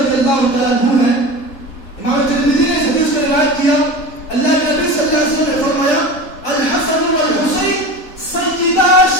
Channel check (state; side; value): late; right; 3.8 ms